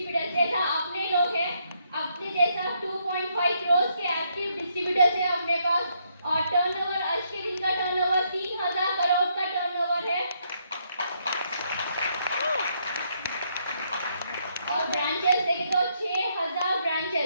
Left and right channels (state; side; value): inverted; both; correlation -0.74